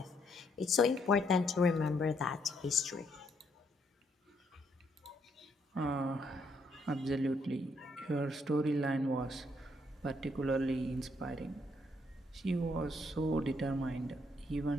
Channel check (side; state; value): both; normal; correlation 0.72